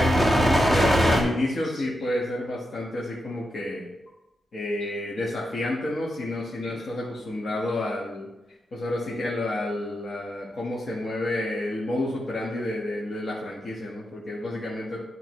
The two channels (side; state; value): both; normal; correlation 0.86